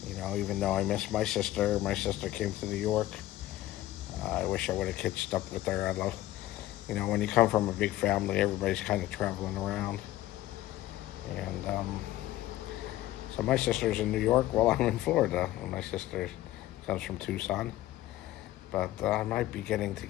You know, even though I miss my sister came to New York. I wish I would have catched up with her. You know, when you come from a big family, everybody's kind of traveling around. And so my sister's in New York while I'm in Florida. And my sister comes from Tucson. But I might be getting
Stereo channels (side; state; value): right; quieter; 15.2 dB